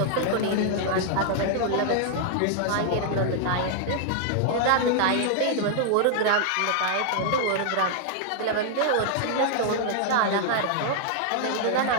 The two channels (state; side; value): different; both; correlation 0.00